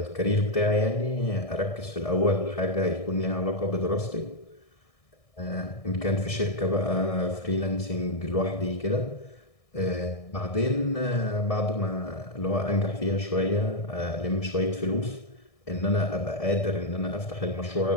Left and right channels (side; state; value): right; late; 1.6 ms